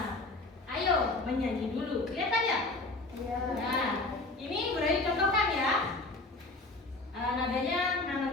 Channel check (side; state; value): right; quieter; 3.0 dB